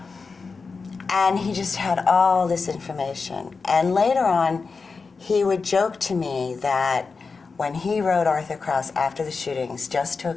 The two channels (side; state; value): right; quieter; 4.6 dB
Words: And he just had all this information. And later on, he would joke to me that when he wrote Arthur Krause after the shootings, just to